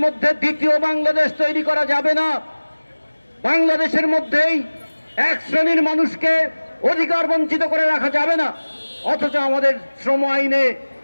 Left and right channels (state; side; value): inverted; both; correlation -1.00